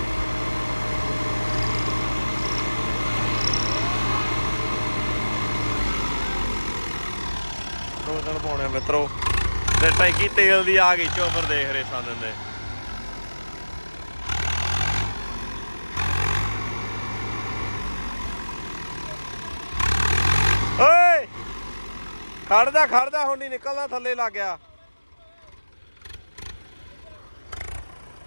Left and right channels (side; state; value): both; inverted; correlation -1.00